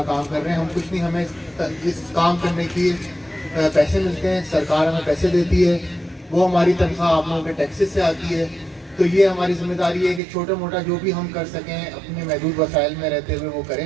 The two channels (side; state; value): left; drops out; at 10.2 s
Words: کام کر رہے ہیں، ہم کچھ نہیں، ہمیں اس کام کرنے کی پیسے ملتے ہیں، سرکار ہمیں پیسے دیتی ہے، وہ ہماری تنخواہ آپ لوگوں کے ٹیکسز سے آتی ہے، تو یہ ہماری ذمہ داری ہے کہ چھوٹا موٹا جو بھی ہم کر سکیں اپنے محدود وسائل میں رہتے ہوئے وہ